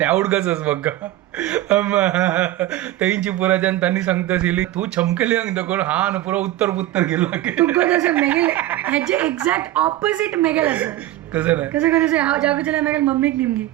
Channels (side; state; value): left; quieter; 15.0 dB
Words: उडकच म्हाका. तेंची पुराच्यान तांणी सांगता आशिल्ली तूं चमकली देखून हा न पुरो उत्तर पुत्तर गेलो. तुका तसं मेगेल हेजे एक्झॅक्ट ऑपोजिट मेगेल आसा. कसं नाही कसं कसं हांव जागोचें मेगेल मम्मीक निमगी